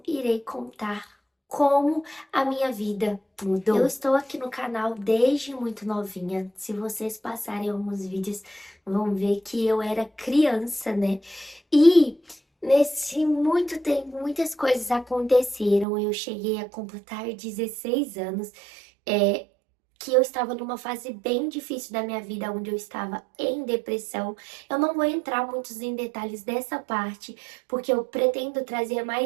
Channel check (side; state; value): left; drops out; at 15.9 s